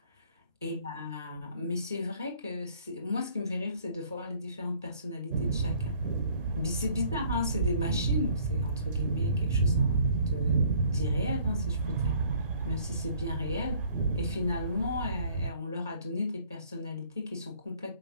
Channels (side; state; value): both; inverted; correlation -0.58